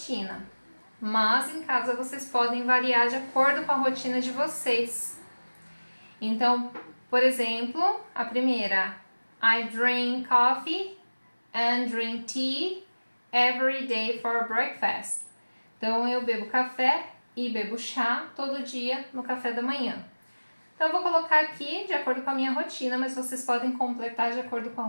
Mas em casa vocês podem variar de acordo com a rotina de vocês. Então, por exemplo, a primeira, I drink coffee and drink tea every day for breakfast. Então, eu bebo café e bebo chá todo dia no café da manhã. Então, eu vou colocar aqui de acordo com a minha rotina, mas vocês podem completar de acordo com a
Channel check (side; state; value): both; inverted; correlation -1.00